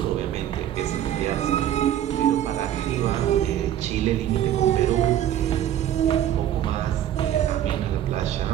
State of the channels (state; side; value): quieter; left; 11.3 dB